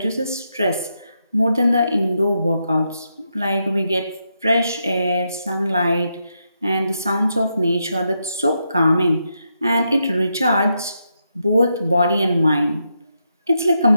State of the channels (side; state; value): both; inverted; correlation -0.83